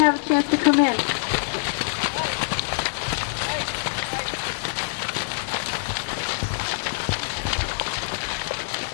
a chance to come in.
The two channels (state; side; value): silent; right; digital silence